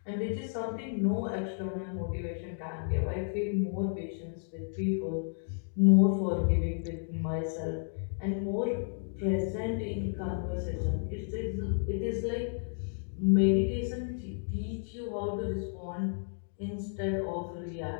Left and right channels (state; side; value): silent; right; digital silence